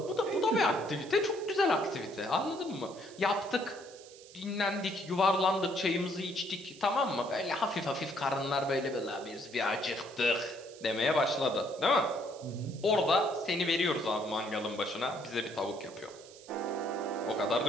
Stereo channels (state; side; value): noise; right; hiss, 20 dB below the sound